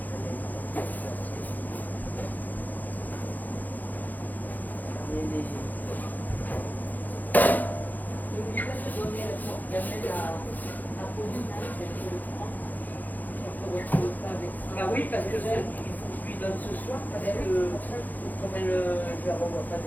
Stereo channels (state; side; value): late; right; 0.083 ms